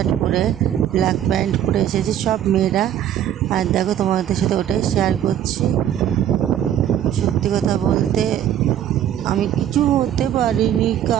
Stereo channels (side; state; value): left; quieter; 10.6 dB